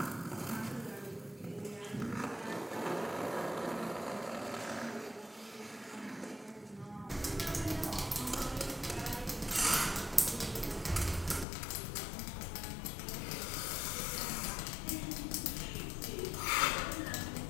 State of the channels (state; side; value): drops out; right; at 11.5 s